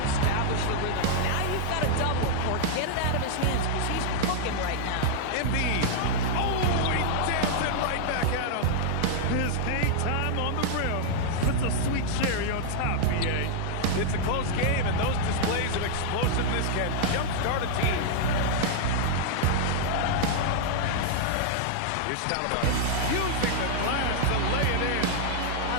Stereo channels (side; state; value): both; different; correlation -0.01